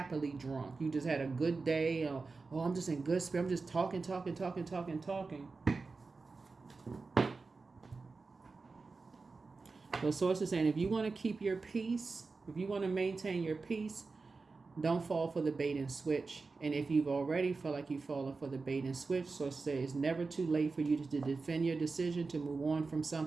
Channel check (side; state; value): left; quieter; 4.1 dB